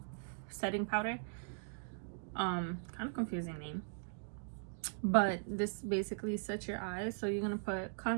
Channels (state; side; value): silent; left; digital silence